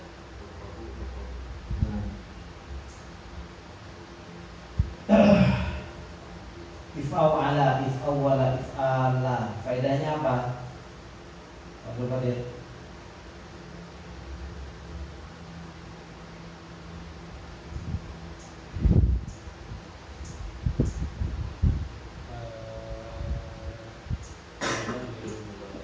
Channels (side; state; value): both; identical; correlation 1.00